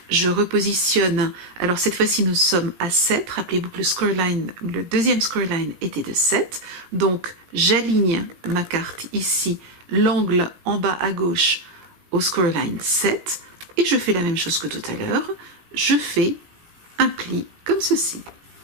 je repositionne, alors cette fois-ci nous sommes à 7, rappelez-vous que le deuxième scoreline était de 7, donc j'aligne ma carte ici, l'angle en bas à gauche au scoreline 7, et je fais la même chose que tout à l'heure, je fais un pli comme ceci.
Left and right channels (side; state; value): left; late; 17 ms